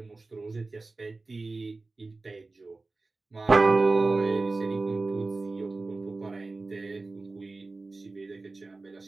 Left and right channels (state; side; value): quieter; left; 3.5 dB